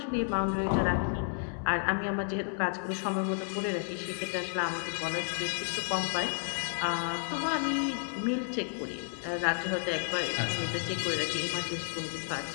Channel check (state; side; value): silent; right; 57 dB below the other